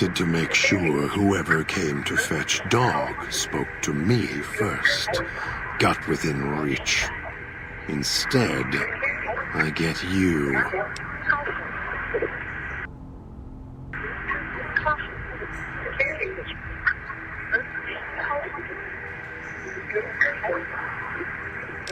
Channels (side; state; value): both; identical; correlation 1.00